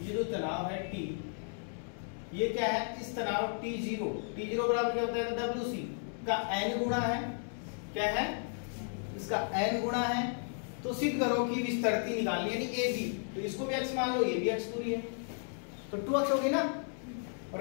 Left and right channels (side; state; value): right; silent; 55 dB below the other